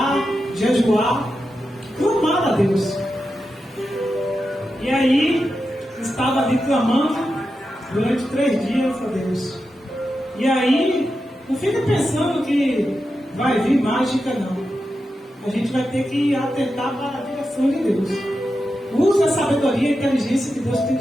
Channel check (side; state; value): both; normal; correlation 0.89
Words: jejuar, clamar a Deus. E aí estava ali clamando durante 3 dias a Deus. E aí não fica pensando que vai vir mágica, não. A gente vai ter que atentar para a direção de Deus. Use a sabedoria e a inteligência que Deus tem